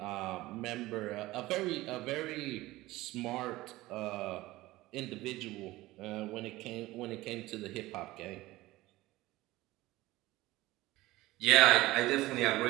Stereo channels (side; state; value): left; quieter; 18.3 dB